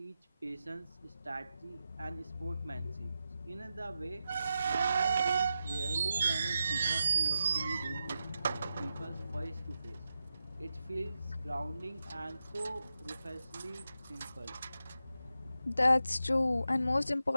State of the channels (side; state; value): both; inverted; correlation -0.89